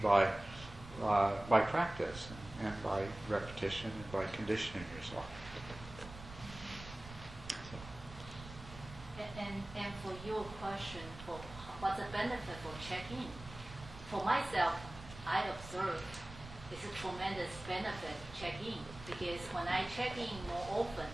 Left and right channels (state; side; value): noise; right; rumble, 14 dB below the sound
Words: by practice and by repetition and by conditioning yourself. And for your question, for what's the benefit for checking? For myself, I observe it's a tremendous benefit to check in, because when I check in more often,